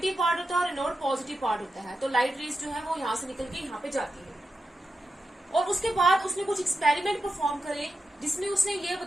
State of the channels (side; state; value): both; normal; correlation 0.89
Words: पार्ट होता है और एनोड पॉजिटिव पार्ट होता है। तो लाइट रेज जो है वो यहाँ से निकल के यहाँ पे जाती है। और उसके बाद उसने कुछ एक्सपेरिमेंट परफॉर्म करे जिसमें उसने ये